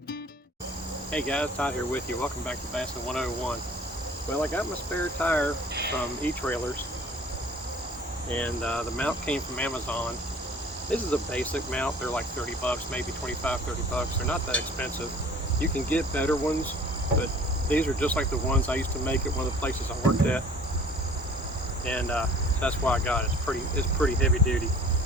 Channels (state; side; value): normal; both; correlation 0.49